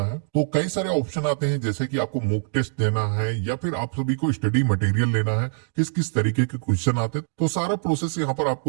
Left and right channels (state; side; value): silent; left; digital silence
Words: है। तो कई सारे ऑप्शन आते हैं जैसे कि आपको मॉक टेस्ट देना है या फिर आप सभी को स्टडी मटेरियल लेना है, किस किस तरीके के क्वेश्चन आते हैं। तो सारा प्रोसेस यहाँ पर